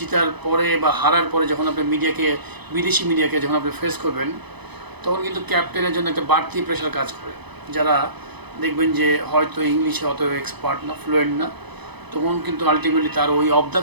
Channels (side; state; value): left; late; 0.99 ms